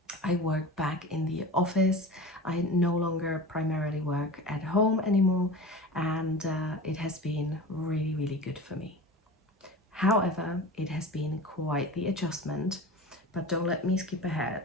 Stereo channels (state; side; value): normal; both; correlation 0.33